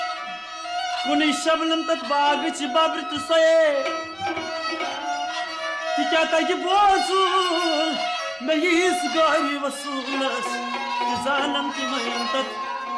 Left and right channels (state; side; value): identical; both; correlation 1.00